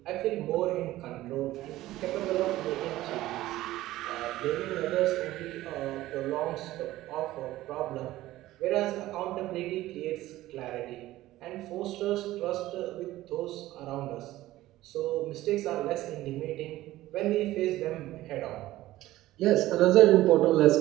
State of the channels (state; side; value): quieter; left; 16.0 dB